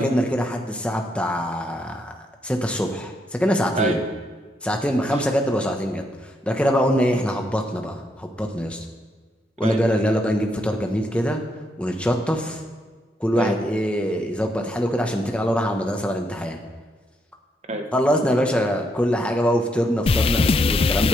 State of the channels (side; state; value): both; normal; correlation 0.77